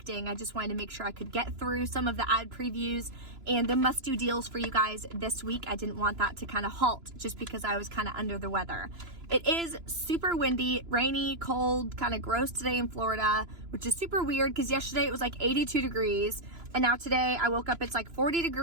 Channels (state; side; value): late; left; 2.9 ms